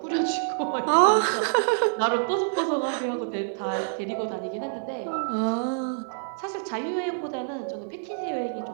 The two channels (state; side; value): silent; left; digital silence